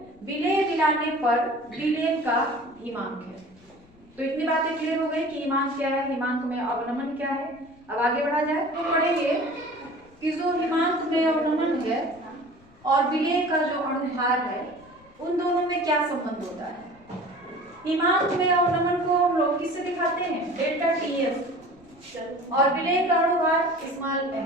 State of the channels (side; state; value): left; noise; rumble, 28 dB below the sound